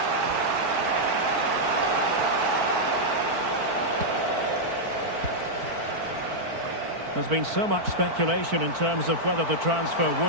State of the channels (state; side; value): late; left; 4.5 ms